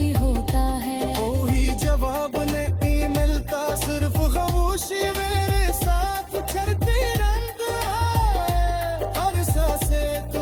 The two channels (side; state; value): both; identical; correlation 1.00